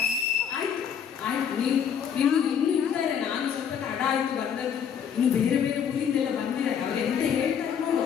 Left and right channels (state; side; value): quieter; right; 7.9 dB